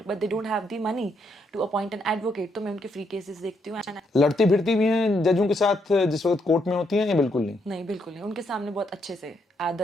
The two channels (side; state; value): both; normal; correlation 0.76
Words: but they don't have the money to appoint an advocate, तो मैं उनके फ्री केसेस देखती हूँ। लड़ती भिड़ती भी हैं जजों के साथ जिस वक्त कोर्ट में होती हैं या बिल्कुल नहीं? नहीं, बिल्कुल नहीं। उनके सामने बहुत अच्छे से